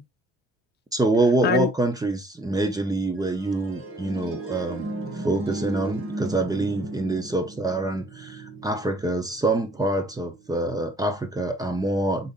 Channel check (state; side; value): normal; both; correlation 0.60